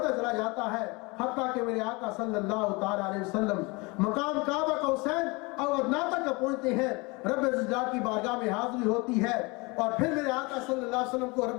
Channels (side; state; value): right; quieter; 26.6 dB